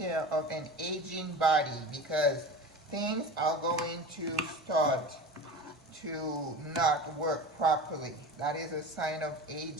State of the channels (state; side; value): normal; both; correlation 0.32